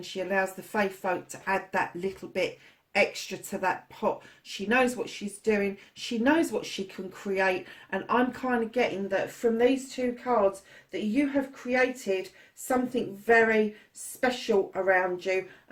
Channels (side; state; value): both; identical; correlation 1.00